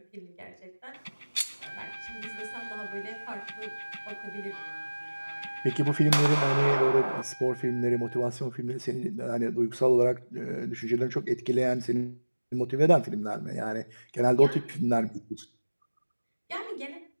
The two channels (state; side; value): inverted; both; correlation -1.00